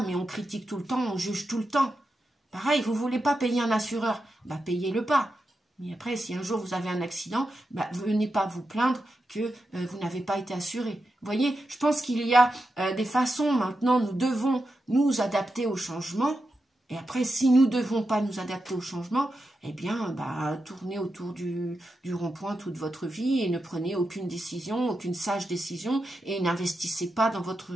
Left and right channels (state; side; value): normal; both; correlation 0.88